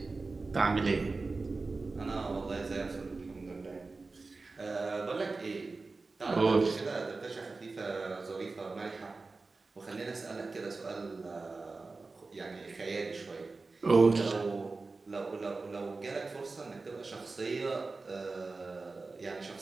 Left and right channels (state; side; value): quieter; left; 3.8 dB